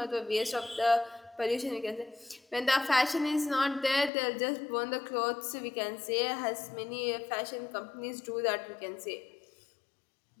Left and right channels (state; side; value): drops out; right; at 4.1 s